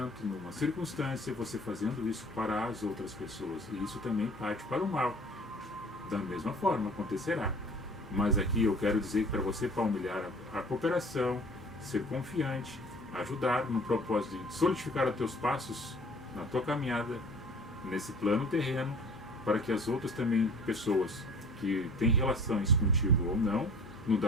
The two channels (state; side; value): normal; both; correlation 0.47